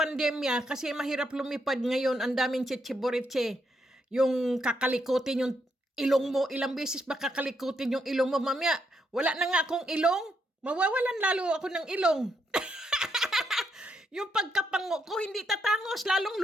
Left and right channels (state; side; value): normal; both; correlation 0.78